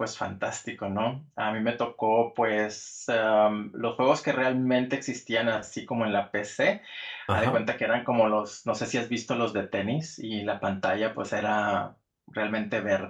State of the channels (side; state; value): both; identical; correlation 1.00